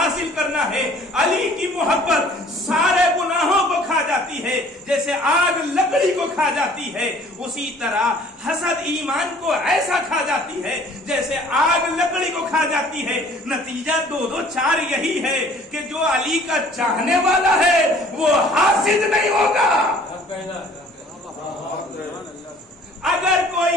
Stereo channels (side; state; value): both; normal; correlation 0.53